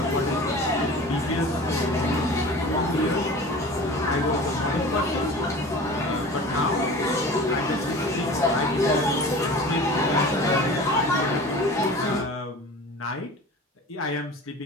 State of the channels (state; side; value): normal; both; correlation 0.38